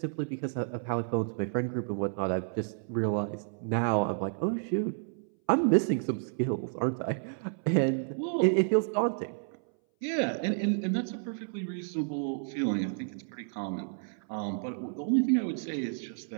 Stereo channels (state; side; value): silent; left; 57 dB below the other